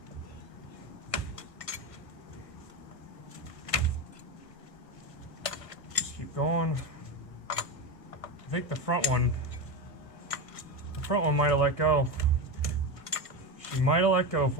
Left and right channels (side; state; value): right; late; 1.5 ms